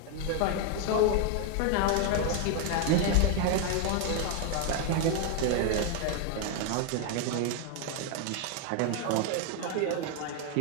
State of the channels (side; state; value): both; different; correlation 0.01